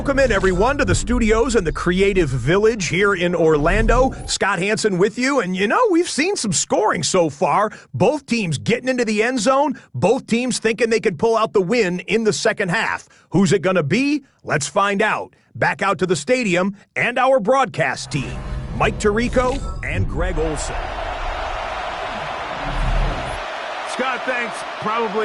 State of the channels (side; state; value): both; identical; correlation 1.00